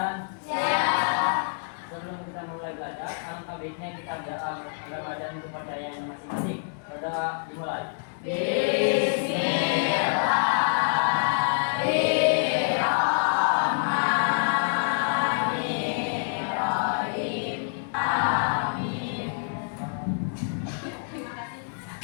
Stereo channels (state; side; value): silent; right; digital silence